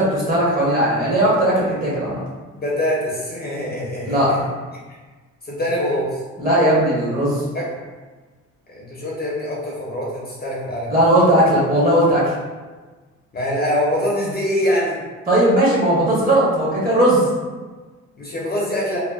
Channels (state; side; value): normal; both; correlation 0.23